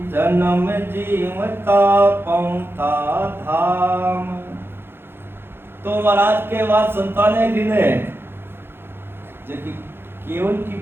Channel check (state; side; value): late; left; 0.11 ms